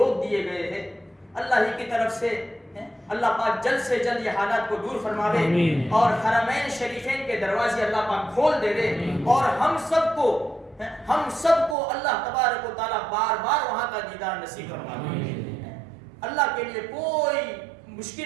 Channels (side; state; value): left; drops out; at 11.8 s